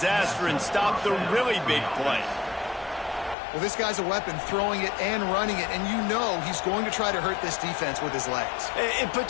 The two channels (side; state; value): right; drops out; at 3.4 s